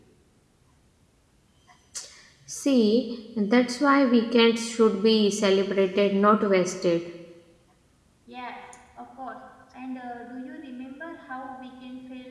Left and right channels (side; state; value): both; identical; correlation 1.00